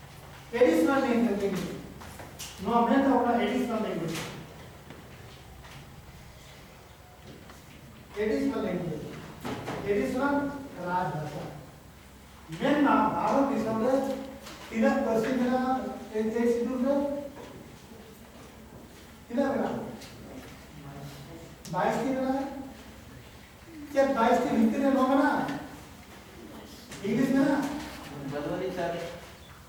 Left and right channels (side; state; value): both; identical; correlation 1.00